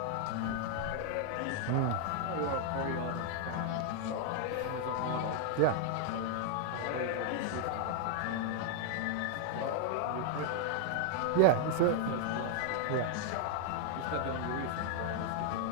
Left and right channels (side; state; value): both; different; correlation 0.00